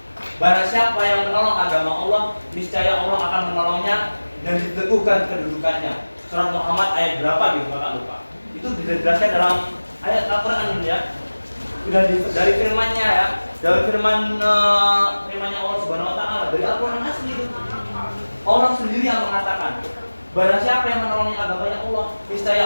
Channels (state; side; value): inverted; both; correlation -1.00